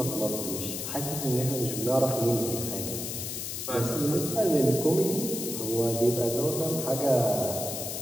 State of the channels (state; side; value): noise; left; hiss, 5 dB below the sound